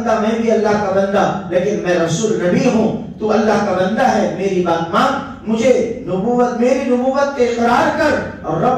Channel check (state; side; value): identical; both; correlation 1.00